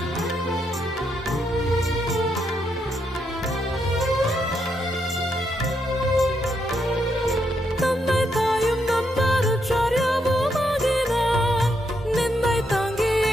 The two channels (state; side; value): normal; both; correlation 0.79